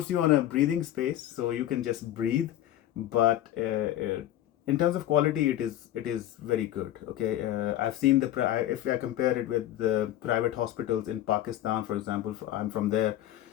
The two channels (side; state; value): right; quieter; 12.9 dB